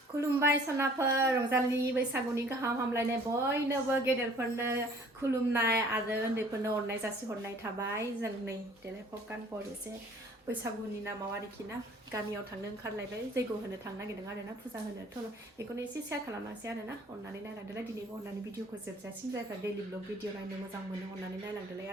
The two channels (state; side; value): normal; both; correlation 0.53